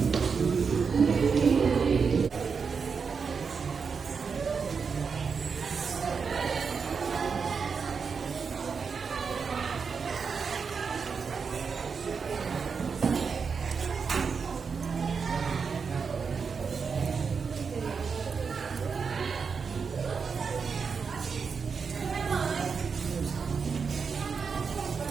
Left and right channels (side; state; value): left; quieter; 5.6 dB